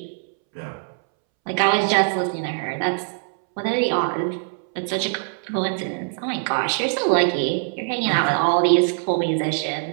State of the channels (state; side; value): silent; left; 64 dB below the other